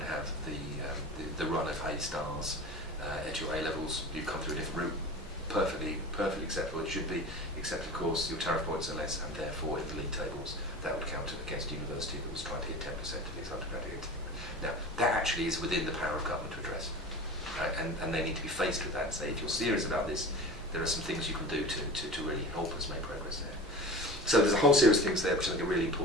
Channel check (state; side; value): normal; both; correlation 0.34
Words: have the run of A stars at your A levels. You've come through a different route. Perfectly acceptable. It should be, except of course your tariff points are less, and therefore in the league tables that would count against a university that was trying to hit 10% of its undergraduate. Now that actually is within the power of government to address, right? And they need to be faced with that and say, if you're serious about this, there are some things you can do to really help us make progress there. So there's a whole series of things there which I think are really